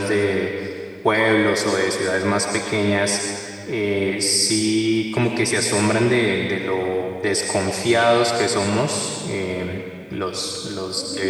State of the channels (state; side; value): identical; both; correlation 1.00